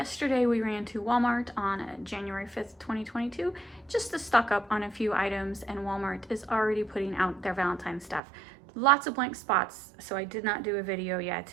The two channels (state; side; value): drops out; left; at 8.2 s